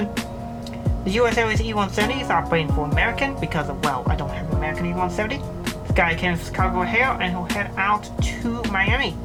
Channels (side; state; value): both; identical; correlation 1.00